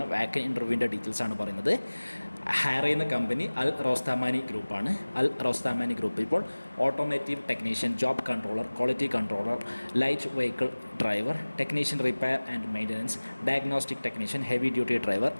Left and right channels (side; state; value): both; inverted; correlation -1.00